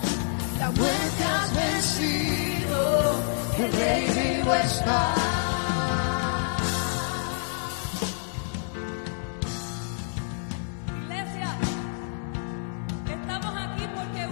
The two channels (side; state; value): right; silent; 60 dB below the other